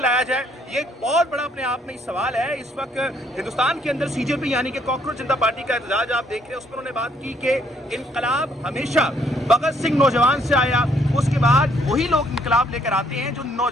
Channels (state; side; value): normal; both; correlation 0.67